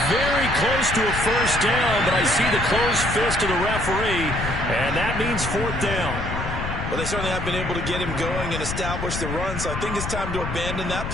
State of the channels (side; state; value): left; noise; rumble, 5 dB below the sound